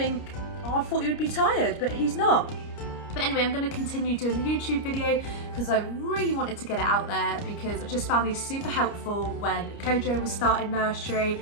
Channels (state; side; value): late; right; 29 ms